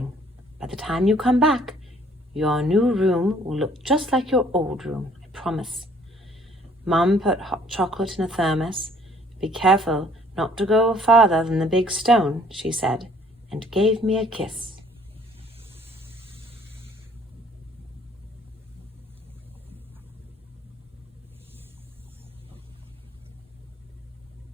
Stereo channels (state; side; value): normal; both; correlation 0.59